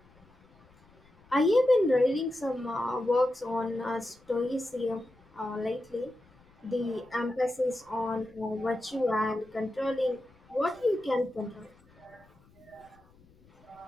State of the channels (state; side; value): noise; left; rumble, 29 dB below the sound